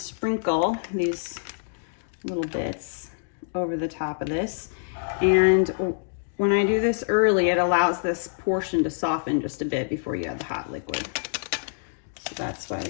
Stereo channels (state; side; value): silent; right; digital silence